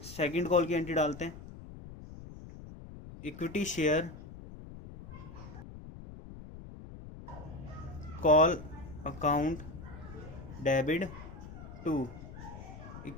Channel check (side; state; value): left; noise; rumble, 13 dB below the sound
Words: सेकंड कॉल की एंट्री डालते हैं, equity share call account debit to